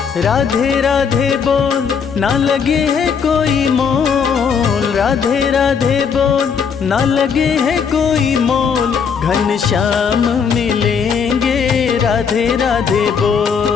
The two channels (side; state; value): right; quieter; 6.5 dB